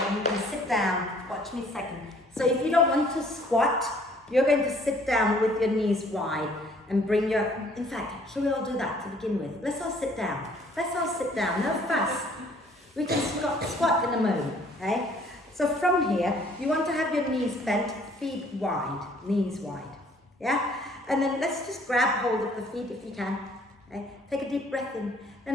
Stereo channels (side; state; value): both; normal; correlation 0.59